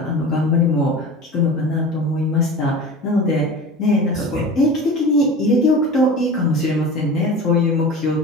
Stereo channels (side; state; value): both; normal; correlation 0.34